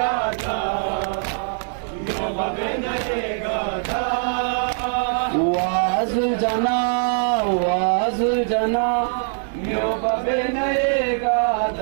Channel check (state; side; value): silent; left; digital silence